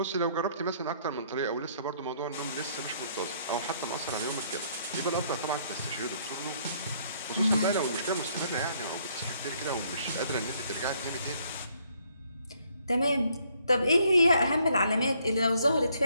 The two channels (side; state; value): both; inverted; correlation -0.67